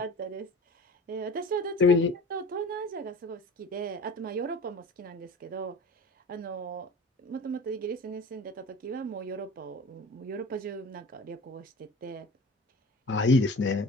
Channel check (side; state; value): both; normal; correlation 0.39